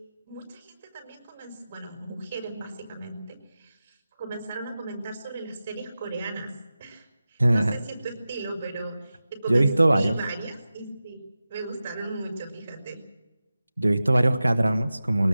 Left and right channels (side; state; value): both; inverted; correlation -0.94